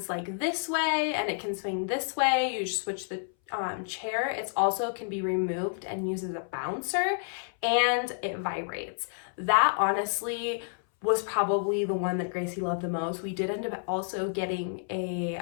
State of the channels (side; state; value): right; silent; 58 dB below the other